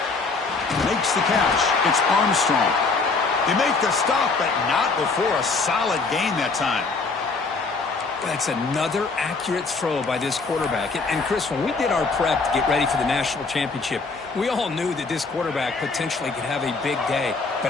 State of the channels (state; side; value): quieter; right; 4.2 dB